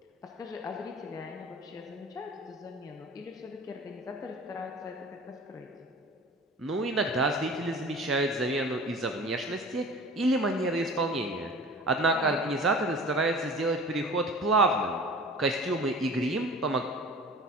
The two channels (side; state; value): both; normal; correlation 0.41